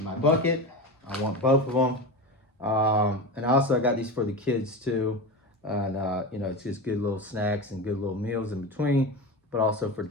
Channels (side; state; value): both; normal; correlation 0.24